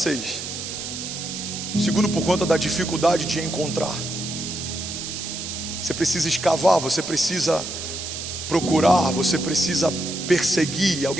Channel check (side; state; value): right; noise; hiss, 7 dB below the sound